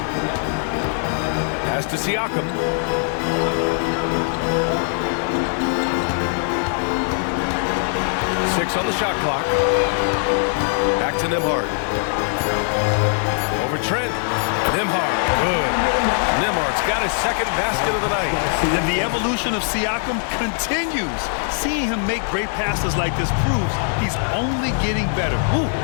Pass to Siakam. Six on the shot clock. Back to Nembhard. Over Trent. Nembhard, good. Nembhard's got his second basket of the night. And the evolution of Siakam continues. Seeing him make great passes like this proves he's only getting better. Ooh,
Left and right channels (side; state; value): right; silent; 59 dB below the other